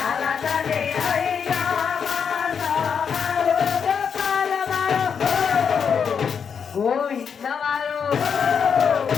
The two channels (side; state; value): right; quieter; 6.8 dB